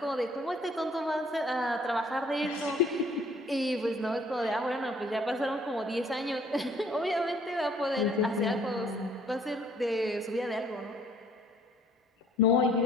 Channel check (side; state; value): both; normal; correlation 0.60